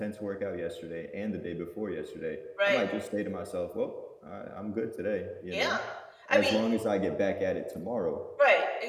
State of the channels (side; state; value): both; identical; correlation 1.00